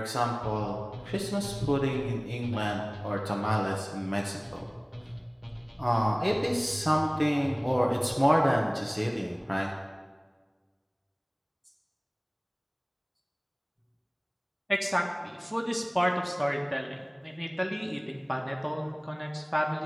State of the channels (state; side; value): identical; both; correlation 1.00